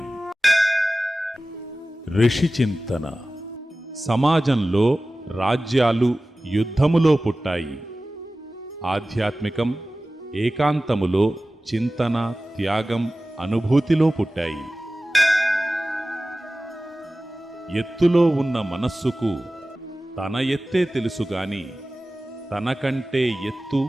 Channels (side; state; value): both; normal; correlation 0.96